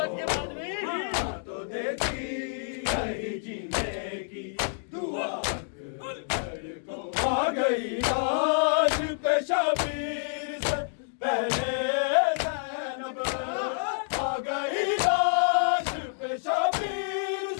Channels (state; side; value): silent; right; digital silence